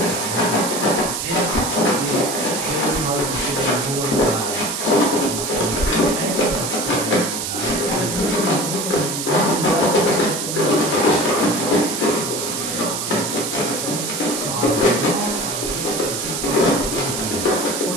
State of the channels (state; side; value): noise; right; hiss, 3 dB below the sound